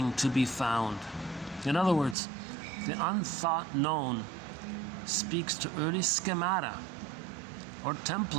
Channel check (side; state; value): left; drops out; at 2.1 s